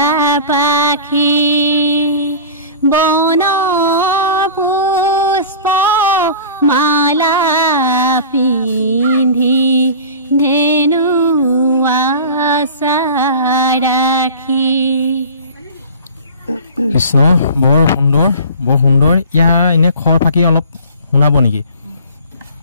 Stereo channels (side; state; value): both; inverted; correlation -0.39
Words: পাখি বন পুষ্প মালা পিন্ধি ধেনু আশা ৰাখি কৃষ্ণ বৰ সুন্দৰ ইয়াৰ এনে খৰ ফাকি অলপ শুনাব নেকি